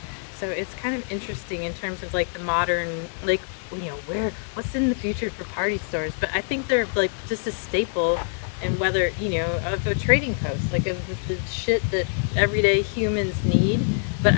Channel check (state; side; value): silent; right; 62 dB below the other